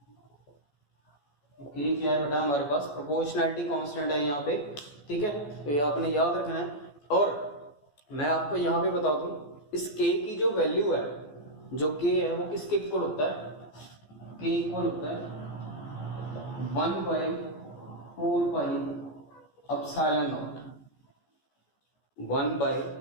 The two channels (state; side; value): late; right; 14 ms